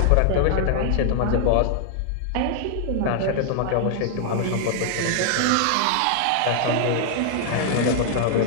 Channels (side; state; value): both; different; correlation -0.01